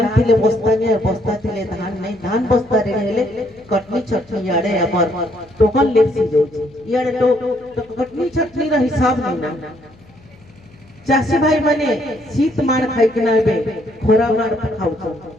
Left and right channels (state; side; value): noise; left; hum, 26 dB below the sound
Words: थिले बस्ता ने बस्ता थिले धान नहीं धान बस्ता रे हेले कटनी छटनी याडे हमर टोकन लेप्सी जाउची याडे तो कटनी छटनी रा हिसाब नहीं ना। चाषी भाई माने शीत मार खाई के नाबे खोरा मार खाउछ।